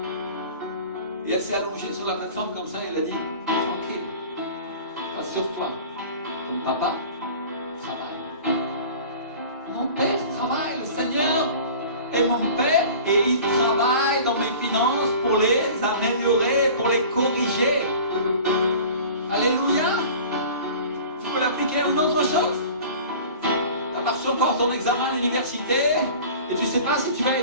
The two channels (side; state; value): both; inverted; correlation -0.41